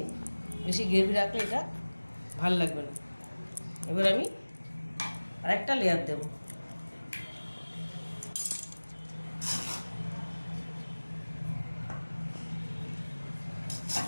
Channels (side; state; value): both; inverted; correlation -1.00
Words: বেশি গ্রেভি রাখলে এটা ভাল লাগবে না। এবার আমি আরেকটা লেয়ার দেব।